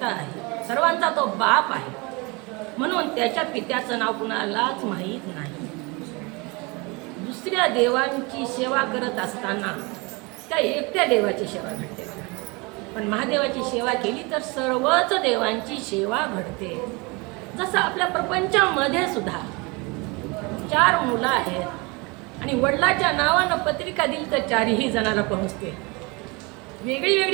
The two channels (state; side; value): quieter; left; 27.4 dB